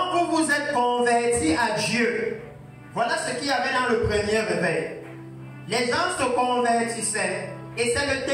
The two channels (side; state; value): both; identical; correlation 1.00